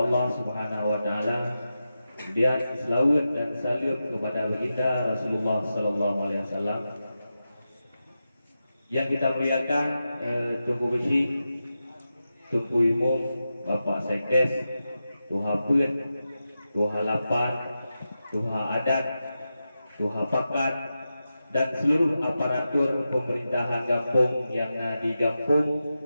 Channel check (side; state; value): both; inverted; correlation -0.91